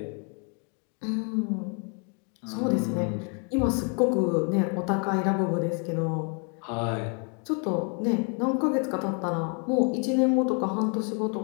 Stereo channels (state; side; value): quieter; right; 38.7 dB